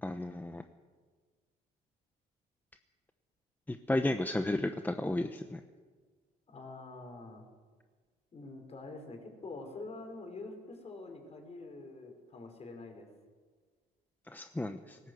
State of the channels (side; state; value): both; normal; correlation 0.89